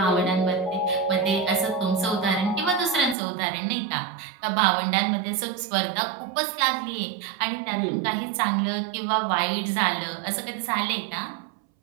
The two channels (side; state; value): left; drops out; at 3.2 s